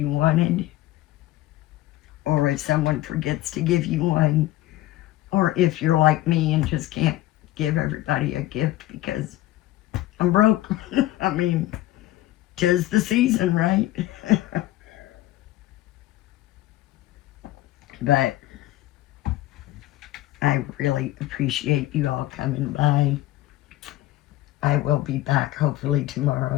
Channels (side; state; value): right; quieter; 15.5 dB